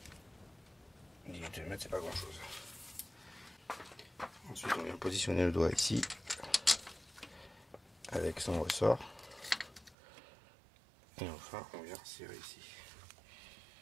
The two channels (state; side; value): drops out; left; at 10.0 s